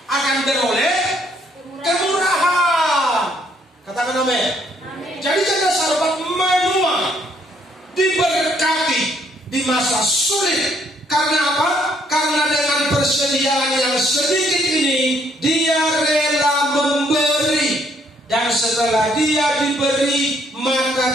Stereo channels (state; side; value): normal; both; correlation 0.68